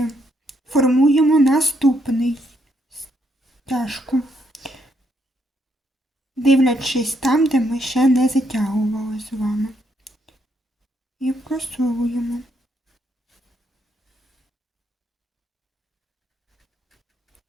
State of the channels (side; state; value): both; normal; correlation 0.75